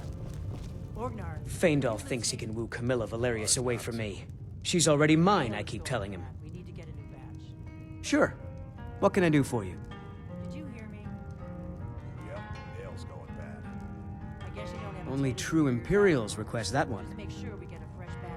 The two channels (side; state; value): both; identical; correlation 1.00